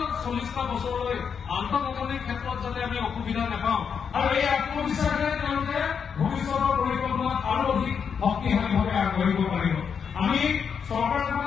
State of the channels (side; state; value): right; quieter; 6.8 dB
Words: 40টা বছৰলৈ আন্তঃগাঁথনিৰ ক্ষেত্ৰত যাতে আমি অসুবিধা নাপাওঁ আৰু এই আত্মবিশ্বাসে তেওঁলোকে ভৱিষ্যতৰ পৰিকল্পনাত আৰু অধিক শক্তিশালীভাৱে আগবাঢ়িব পাৰিব। আমি